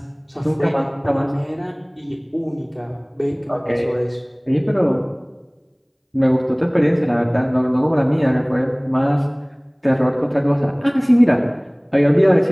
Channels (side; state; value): both; identical; correlation 1.00